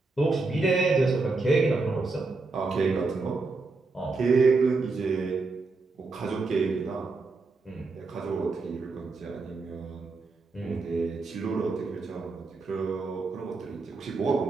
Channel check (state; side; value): quieter; left; 3.8 dB